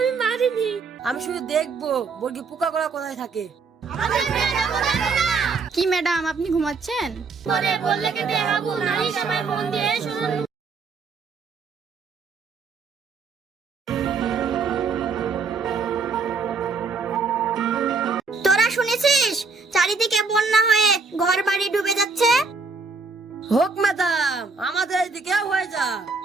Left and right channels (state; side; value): quieter; left; 4.5 dB